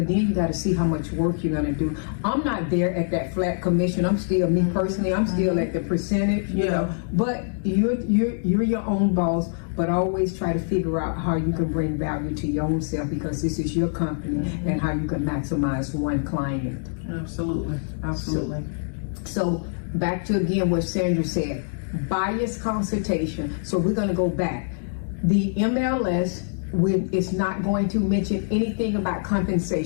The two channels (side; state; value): right; silent; digital silence